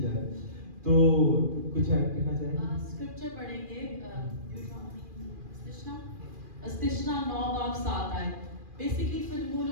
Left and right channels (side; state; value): left; late; 2.4 ms